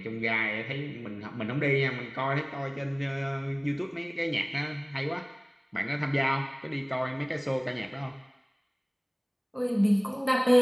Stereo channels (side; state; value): both; identical; correlation 1.00